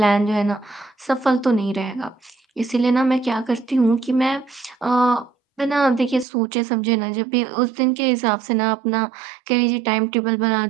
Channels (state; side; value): drops out; left; at 6.2 s